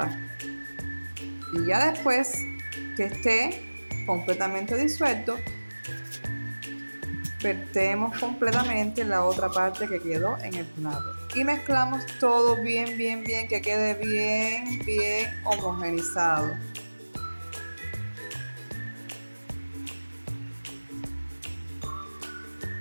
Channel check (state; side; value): inverted; both; correlation -1.00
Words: Y ya después que esté completamente disuelto, vertemos completamente la otra parte que quedó en el plato y mezclamos todo bien, que quede bien homogenizado.